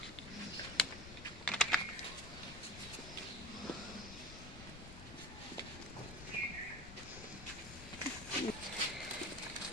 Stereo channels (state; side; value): noise; left; rumble, 12 dB below the sound